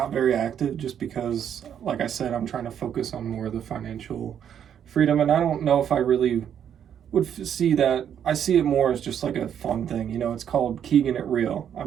very active just because, like I said, I'm trying to focus on more of the financial freedom, and I don't know if I really would see that. I see it more as just like a fun thing. It's called Keegan It Real.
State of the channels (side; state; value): left; quieter; 9.0 dB